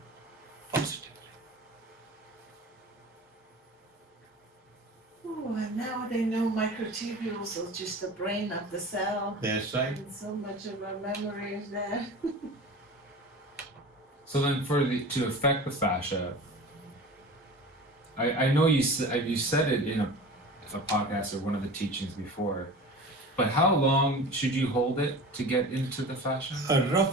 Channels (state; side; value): normal; both; correlation 0.36